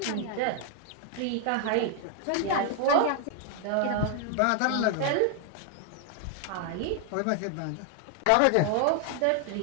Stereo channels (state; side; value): different; both; correlation 0.00